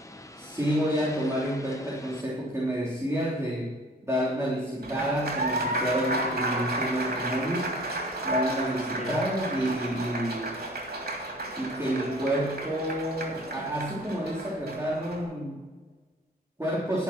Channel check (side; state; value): both; normal; correlation 0.49